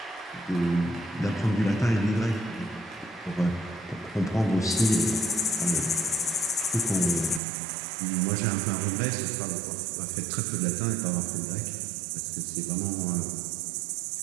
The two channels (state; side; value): drops out; left; at 7.4 s